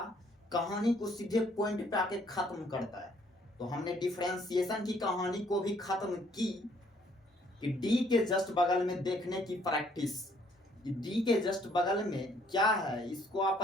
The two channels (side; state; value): both; normal; correlation 0.64